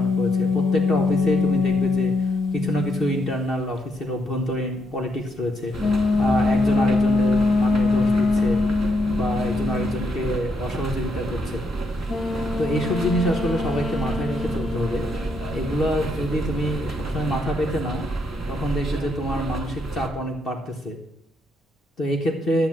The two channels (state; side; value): normal; both; correlation 0.77